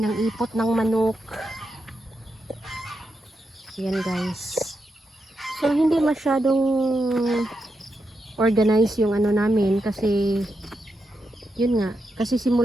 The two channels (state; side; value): normal; both; correlation 0.86